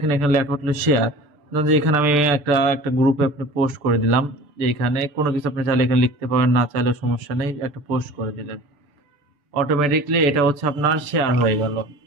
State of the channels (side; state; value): left; late; 6.8 ms